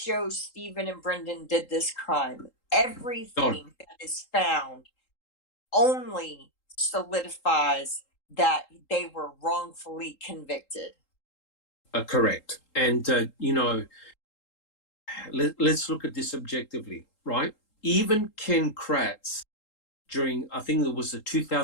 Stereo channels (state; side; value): late; right; 3.8 ms